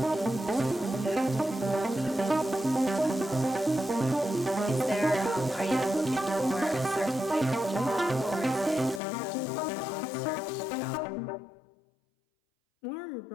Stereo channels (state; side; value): drops out; right; at 9.0 s